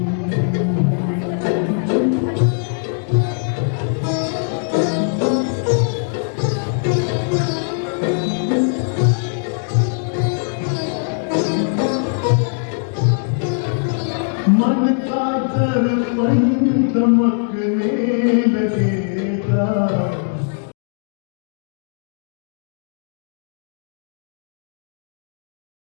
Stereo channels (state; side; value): silent; right; 66 dB below the other